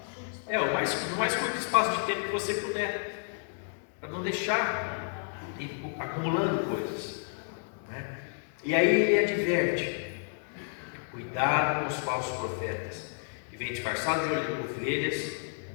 o mais curto espaço de tempo que você puder, para não deixar acumulando coisas, E aí ele adverte: cuidado com os falsos profetas, que vêm disfarçados de ovelhas,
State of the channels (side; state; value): right; silent; digital silence